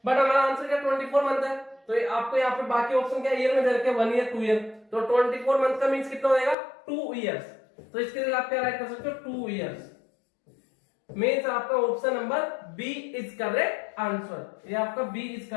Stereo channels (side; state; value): right; drops out; at 6.6 s